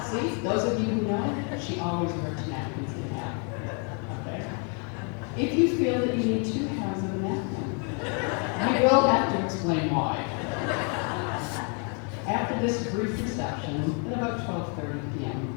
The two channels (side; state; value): right; quieter; 37.8 dB